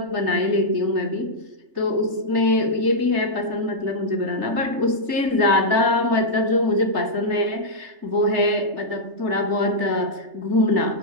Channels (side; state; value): left; late; 3.3 ms